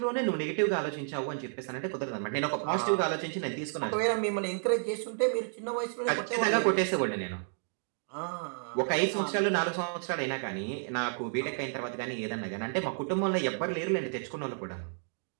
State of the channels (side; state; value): left; silent; digital silence